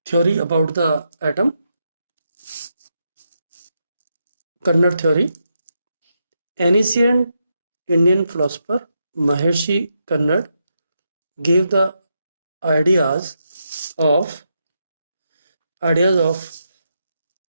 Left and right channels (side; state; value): both; inverted; correlation -0.83